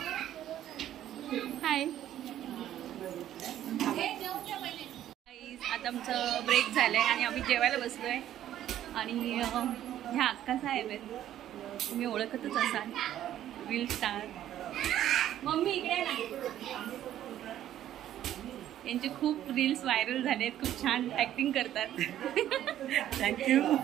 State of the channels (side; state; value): left; quieter; 11.9 dB